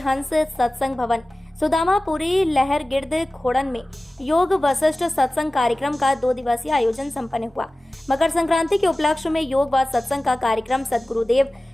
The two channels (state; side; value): normal; both; correlation 0.97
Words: सत्संग भवन सुदामापुरी लहर गिर्द खोड़न में योग वशिष्ठ सत्संग कार्यक्रम का 2 दिवसीय आयोजन संपन्न हुआ। मकर संक्रांति के उपलक्ष्य में योग व सत्संग का कार्यक्रम सदगुरुदेव